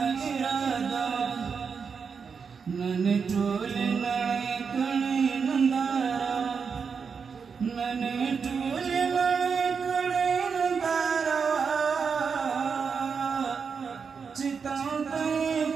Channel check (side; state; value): left; quieter; 5.8 dB